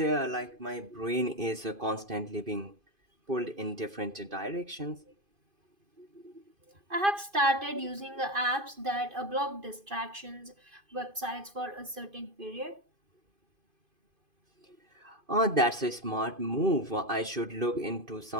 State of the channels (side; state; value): left; late; 2.5 ms